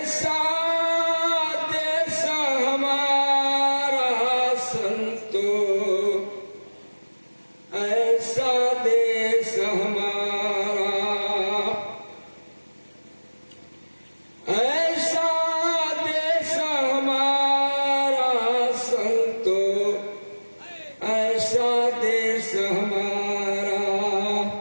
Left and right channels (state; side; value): inverted; both; correlation -1.00